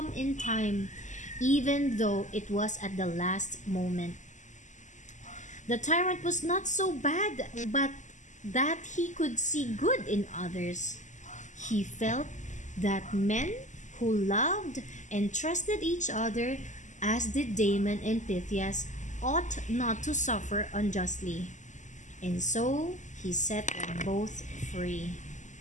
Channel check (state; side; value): late; right; 0.35 ms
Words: in time, even though it was at the last moment. The tyrant was not so bad, but that he could see good in others. He felt that men who loved and trusted each other, as did Damon and Phythias, ought not to suffer unjustly. And so he set them both free.